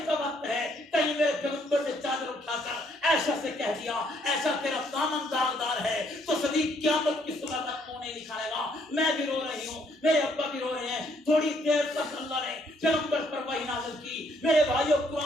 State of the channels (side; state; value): both; normal; correlation 0.69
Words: کا وقت ہے، کہیں میرے پیغمبر نے چادر اٹھا کر عائشہ سے کہہ دیا ایسا تیرا دامن داغدار ہے تو صدیق قیامت کی صبح تک منہ نہیں دکھائے گا۔ میں بھی رو رہی ہوں، میرے ابا بھی رو رہے ہیں۔ تھوڑی دیر تک اللہ نے پیغمبر پر وحی نازل کی۔ میرے بھائیوں